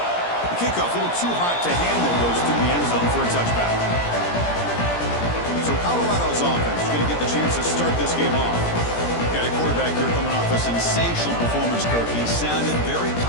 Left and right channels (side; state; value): right; late; 17 ms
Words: The kickoff a little too hot to handle, goes through the end zone for a touchback. So Colorado's offense is going to get the chance to start this game off. Got a quarterback here coming off a sensational performance, Kirk. He sounded very